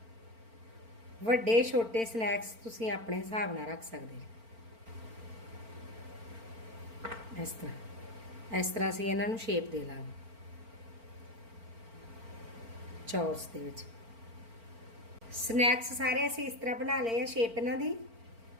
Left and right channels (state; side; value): late; left; 4.4 ms